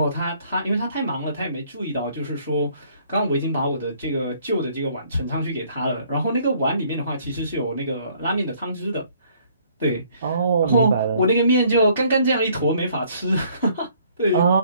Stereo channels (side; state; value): both; inverted; correlation -0.62